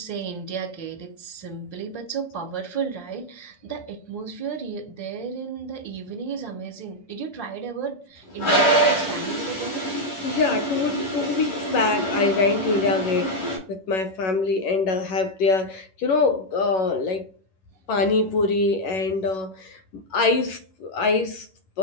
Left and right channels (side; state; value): right; late; 11 ms